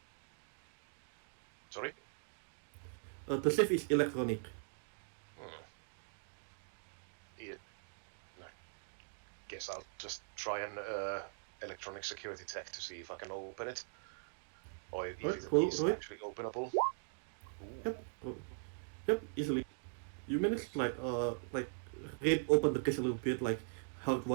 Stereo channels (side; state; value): left; silent; digital silence